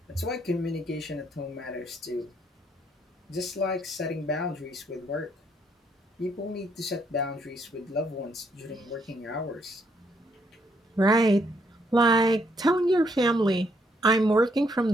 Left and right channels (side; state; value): both; normal; correlation 0.72